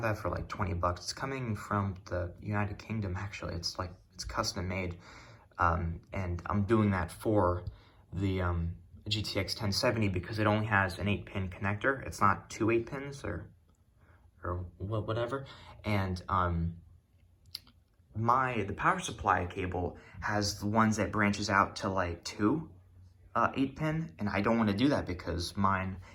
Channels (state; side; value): identical; both; correlation 1.00